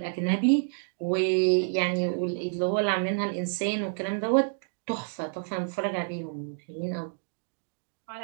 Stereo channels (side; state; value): left; silent; digital silence